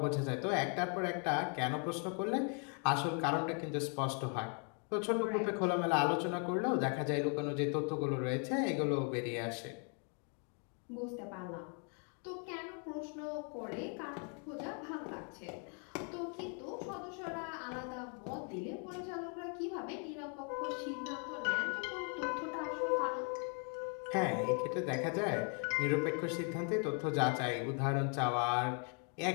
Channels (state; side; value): quieter; right; 40.0 dB